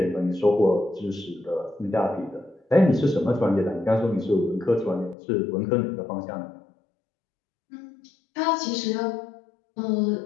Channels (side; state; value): right; drops out; at 5.2 s